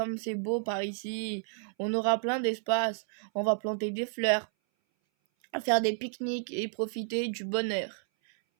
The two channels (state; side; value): silent; left; 57 dB below the other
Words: c'est beau par ici. On aura plein d'espace. On va planter des fleurs, faire des pique-niques et profiter du bonheur.